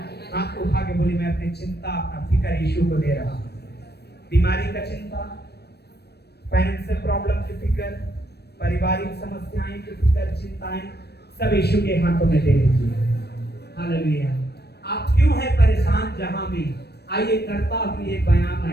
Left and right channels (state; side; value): late; right; 0.47 ms